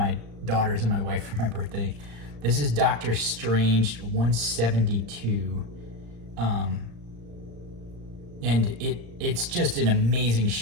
daughters and my wife for my birthday. This is Doctor Strange 172. And it's just an amazing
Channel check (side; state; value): left; late; 35 ms